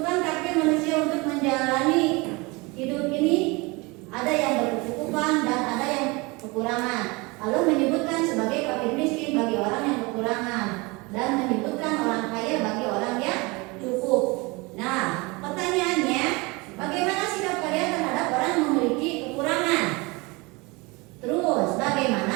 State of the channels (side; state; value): left; quieter; 25.8 dB